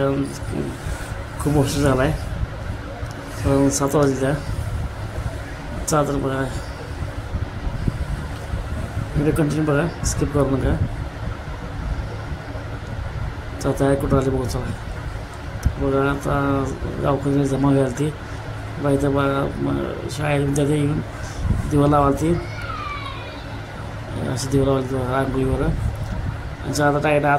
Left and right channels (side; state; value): both; identical; correlation 1.00